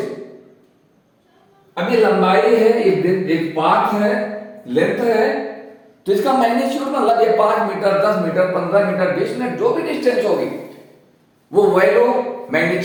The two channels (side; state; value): both; identical; correlation 1.00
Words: अब ये लंबाई है, एक पाथ है, लेंथ है, तो इसका मैग्नीट्यूड मतलब ये 5 मीटर, 10 मीटर, 15 मीटर, 20 मीटर, जो भी डिस्टेंस होगी वो वैल्यू